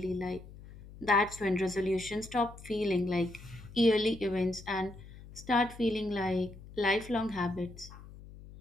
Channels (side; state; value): left; noise; hum, 17 dB below the sound